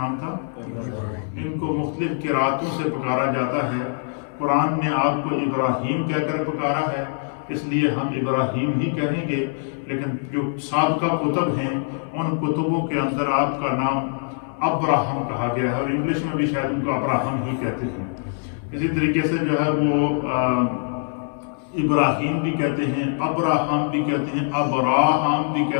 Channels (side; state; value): right; silent; 63 dB below the other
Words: تھا؟ ان کو مختلف قراتوں سے پکارا جاتا ہے۔ قرآن نے آپ کو ابراہیم کہہ کر پکارا ہے، اس لیے ہم ابراہیم ہی کہیں گے، لیکن جو سابقہ کتب ہیں ان کتبوں کے اندر آپ کا نام ابراہم کہا گیا ہے، اور انگلش میں بھی شاید ان کو ابراہم ہی کہتے ہیں۔ اسی طریقے سے جو ہے وہ ابراہیم بھی کہتے ہیں، ابراہم بھی کہتے ہیں، ابراہم بھی